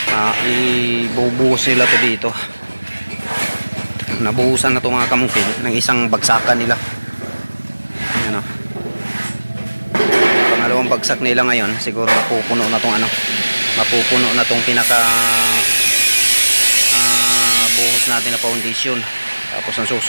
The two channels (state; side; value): inverted; both; correlation -1.00